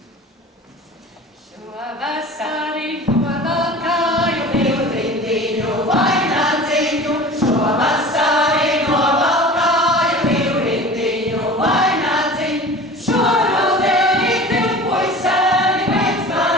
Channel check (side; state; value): both; normal; correlation 0.39